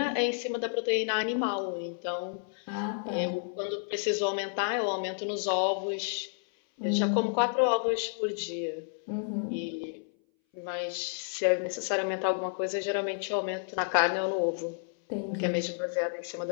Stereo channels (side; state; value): right; silent; 57 dB below the other